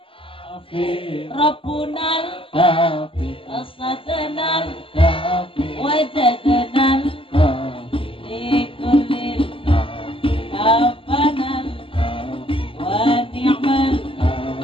Rabbunal Kafi. Asadanal Kafi. Wajadanal Kafi. Likulil Kafanal Wa ni'mal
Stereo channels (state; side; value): late; right; 0.26 ms